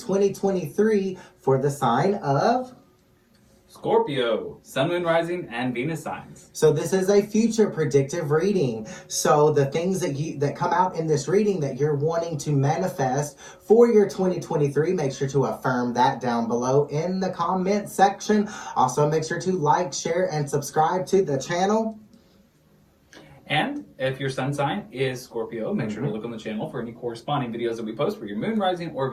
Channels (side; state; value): both; identical; correlation 1.00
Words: for the sign of Scorpio, Sun, Moon, Rising, and Venus signs. So this is a future predictive reading. So the things that come out in this reading that you're wanting to manifest for your 2023, make sure to affirm that down below in the comment section. Also, make sure to like, share, and subscribe to the channel. And if your sun sign is Scorpio, make sure to look on the channel for any corresponding videos that we post for your Moon, Rising, or